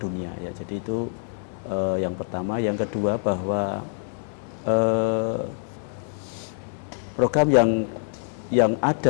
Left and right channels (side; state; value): right; silent; 61 dB below the other